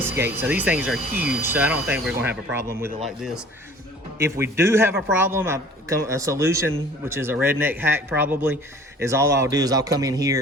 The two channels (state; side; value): normal; both; correlation 0.49